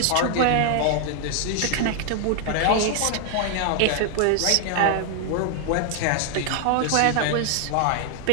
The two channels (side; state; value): both; different; correlation 0.00